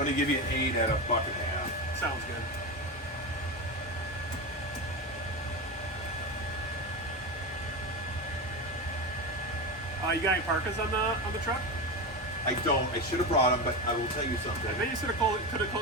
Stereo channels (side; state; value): both; normal; correlation 0.19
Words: give you an 8 at $1.50. Sounds good. You got any parkas on the truck? I don't. I should have brought them, but I will tell you something. Maybe you could